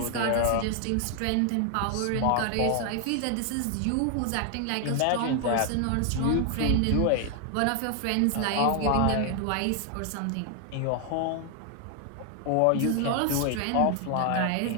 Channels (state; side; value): different; both; correlation 0.00